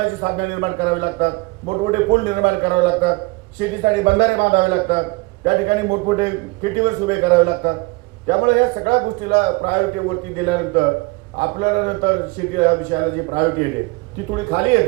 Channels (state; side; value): quieter; left; 24.5 dB